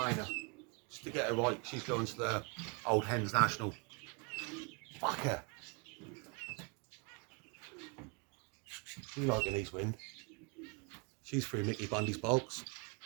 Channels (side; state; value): left; quieter; 32.6 dB